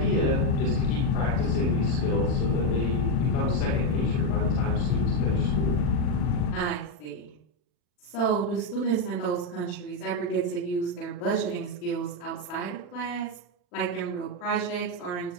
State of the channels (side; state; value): right; late; 40 ms